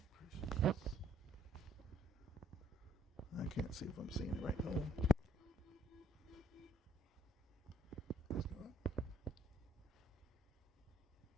I can't see if I'm seeing it right now. Let's go up.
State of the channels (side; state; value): both; normal; correlation 0.65